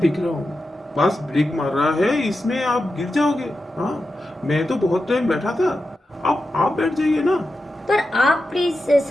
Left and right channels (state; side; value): normal; both; correlation 0.90